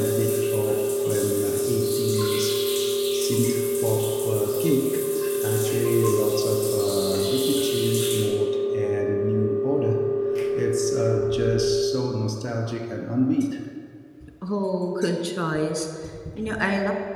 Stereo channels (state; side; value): identical; both; correlation 1.00